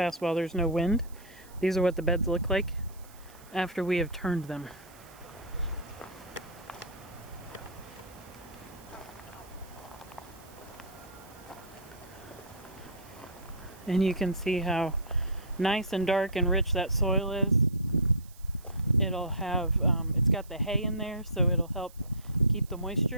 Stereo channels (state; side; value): noise; right; hiss, 24 dB below the sound